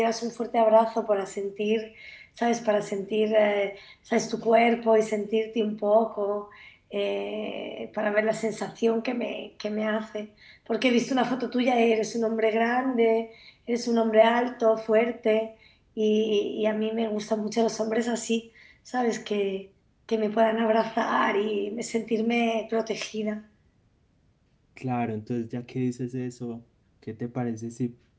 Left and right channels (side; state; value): both; identical; correlation 1.00